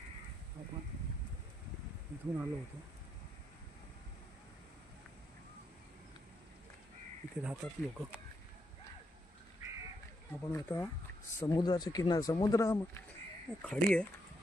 आपण इथून आलो होतो, इथे राहतात लोक। आपण आता समुद्राच्या किनार, समुद्र खाडी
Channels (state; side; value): normal; both; correlation 0.78